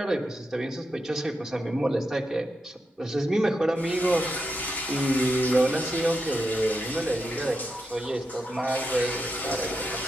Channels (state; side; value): normal; both; correlation 0.86